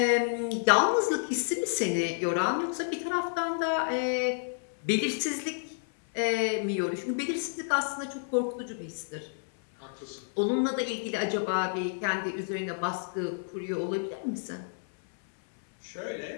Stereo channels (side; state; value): right; silent; 58 dB below the other